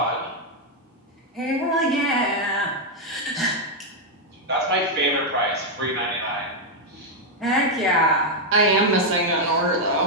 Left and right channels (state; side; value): normal; both; correlation 0.00